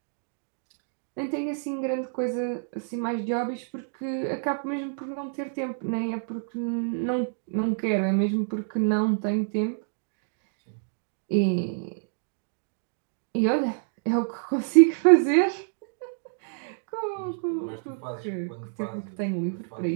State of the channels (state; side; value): silent; left; digital silence